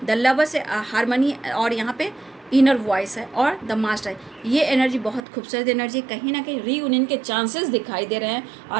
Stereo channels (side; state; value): left; drops out; at 5.2 s